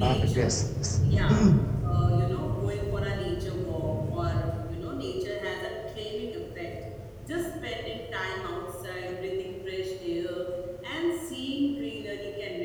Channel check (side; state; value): both; identical; correlation 1.00